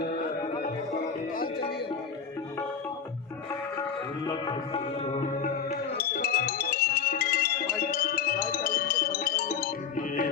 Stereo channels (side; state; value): right; quieter; 6.9 dB